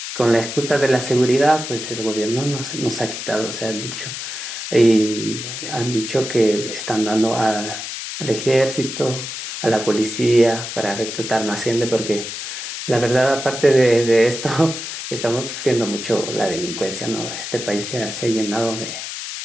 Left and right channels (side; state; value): left; noise; hiss, 7 dB below the sound